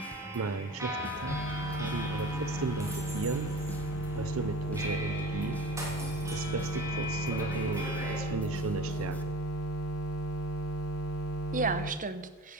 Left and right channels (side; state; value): both; normal; correlation 0.38